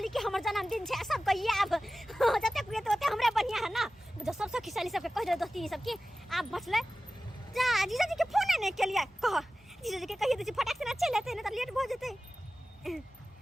कि हमर जन्मदिन छे सब कहिए अब जते कुए तो हमरे बढ़िया है ना जो सब खिसाली सबके कह दे दोस्ती सब की आप बचले जा जीजा जी के फोन नहीं के लिए कह जीजा जी के कहिए दे फटाक से ना चल लेते ना तो लेट हो जेते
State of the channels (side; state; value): both; normal; correlation 0.95